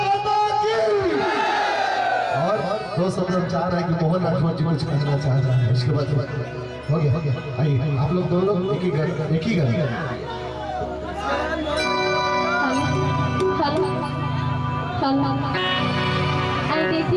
दो शब्द हम चाह रहे हैं कि मोहन राठौर जी कुछ कहना चाह रहे हैं, उसके बाद हो गया आइए आप लोग दोनों एक ही घर देखिए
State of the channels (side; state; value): both; identical; correlation 1.00